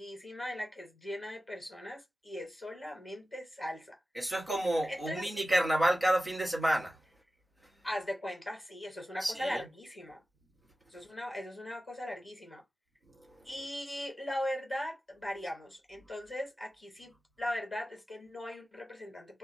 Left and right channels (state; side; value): normal; both; correlation 0.95